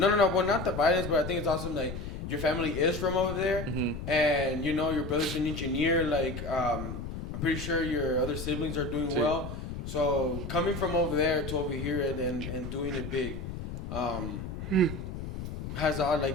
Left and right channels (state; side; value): noise; left; rumble, 7 dB below the sound